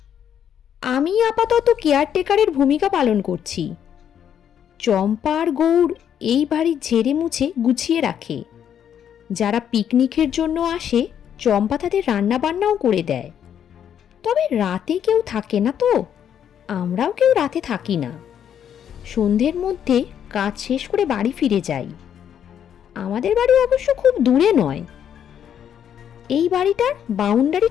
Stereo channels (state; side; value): quieter; right; 9.1 dB